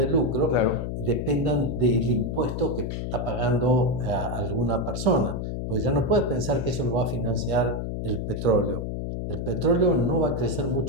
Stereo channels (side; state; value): left; noise; hum, 4 dB below the sound